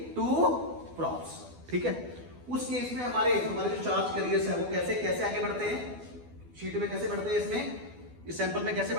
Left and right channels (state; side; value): late; left; 12 ms